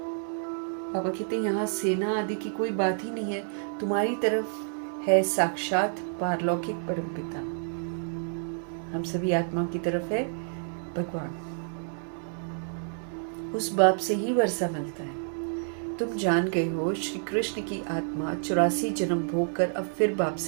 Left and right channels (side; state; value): left; silent; digital silence